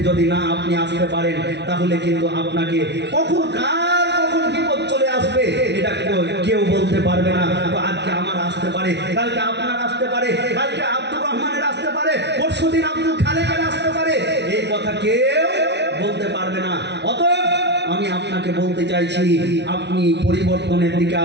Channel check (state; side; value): late; left; 0.50 ms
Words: যদি না আপনি আসতে পারেন, তাহলে কিন্তু আপনাকে কখন বিপদ চলে আসবে এটা কেউ বলতে পারবে না। আজকে আমার আসতে পারে, কালকে আপনার আসতে পারে, কালকে আব্দুর রহমানের আসতে পারে, পরশুদিন আব্দুল খালেকের আসতে পারে, এই কথা কেউ বলতে পারবে না। অতএব আমি আপনাকে বলতে চাইছি, আপনি পরিবর্তনের দিকে